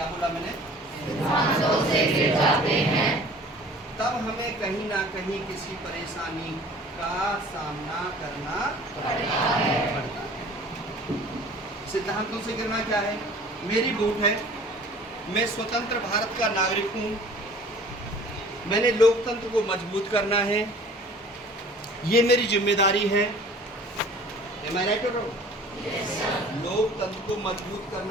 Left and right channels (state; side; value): normal; both; correlation 0.48